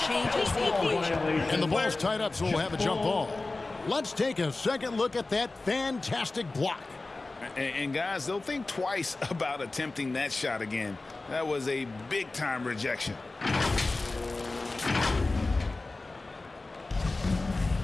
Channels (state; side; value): quieter; right; 3.3 dB